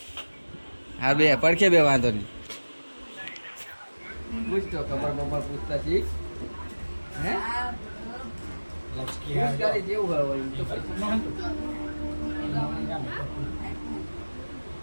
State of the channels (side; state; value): both; inverted; correlation -1.00